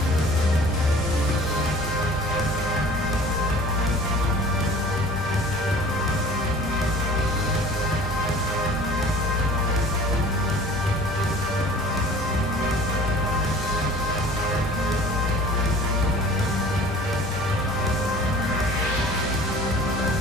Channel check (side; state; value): both; normal; correlation 0.46